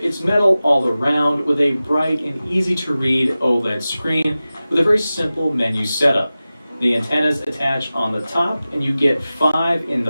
metal all around with a bright and easy to read OLED screen with a very simple menu setup. The antennas attach on the top and you get 5 in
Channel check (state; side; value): inverted; both; correlation -0.96